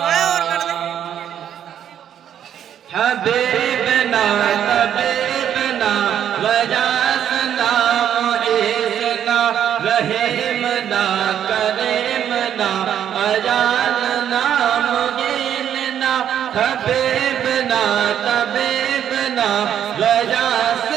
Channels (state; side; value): quieter; left; 9.7 dB